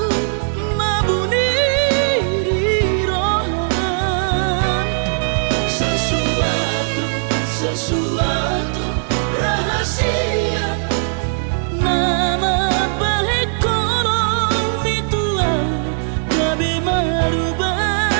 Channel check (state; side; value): silent; left; digital silence